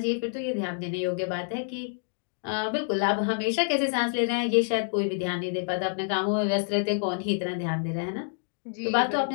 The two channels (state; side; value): silent; right; digital silence